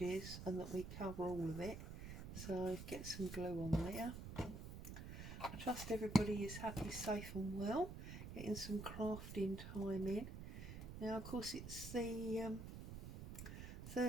and that we cover all of it. So get some glue on there. I trust everybody is happy, safe and well, getting some crafting time in. Now of course it's the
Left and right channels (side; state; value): right; noise; rumble, 8 dB below the sound